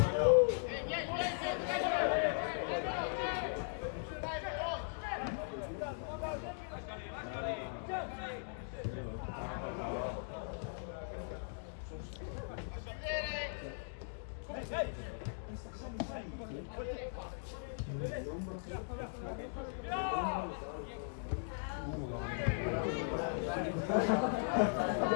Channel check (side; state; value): right; silent; digital silence